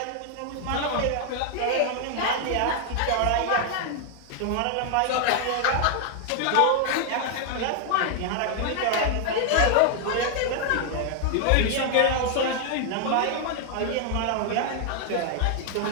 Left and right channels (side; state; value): both; different; correlation 0.00